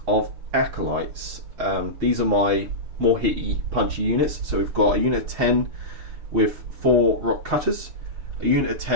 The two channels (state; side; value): late; left; 6.9 ms